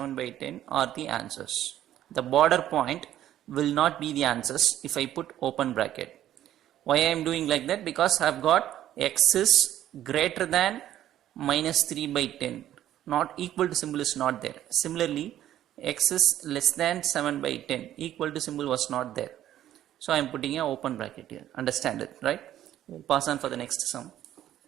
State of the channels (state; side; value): quieter; left; 12.2 dB